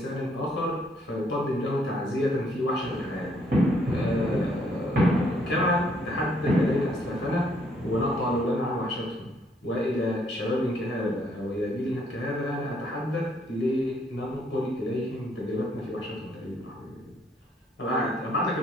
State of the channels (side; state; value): both; normal; correlation 0.68